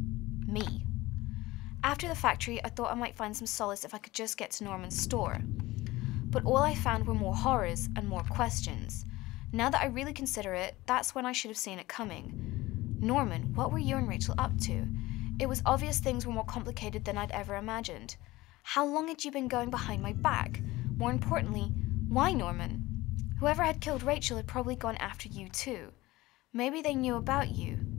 Me. After the factory, I thought I might find some solace if I could just get to Norman's store. But all I found were more horrors and more questions. Now that I really consider it, that's when I should have seen it coming. Norman, what were you and Rachael up to? It was obvious things were more complicated than I'd ever imagined. How long had you been going behind my back? More importantly, why Norman? Whoever had killed Rachael had probably gone after you too. Maybe they knew about you.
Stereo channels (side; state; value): right; quieter; 19.0 dB